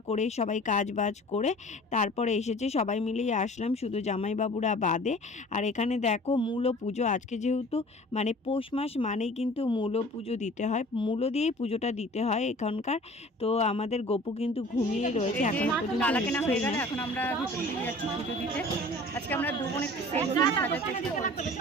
করে সবাই কাজ বাজ করে তারপরে এসেছি। সবাই মিলেই আসলাম, শুধু জামাইবাবুরা বাদে। আর এখানে দেখো মূলো পুজো, আজকে যেহেতু মানে পৌষ মাস মানেই কিন্তু মূলো পুজো দিতে হয়, মূলো দিয়েই পুজোটা দিতে হয় এখানকার। তো আমাদের গোপু কিন্তু ঘুমিয়ে রয়েছে, এখন পর্যন্ত এখন আমরা ভিতর দিকে যাচ্ছি পুজো দিতে। আজকে আমরা একটু সেম সাজার চেষ্টা করছি,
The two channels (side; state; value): both; normal; correlation 0.46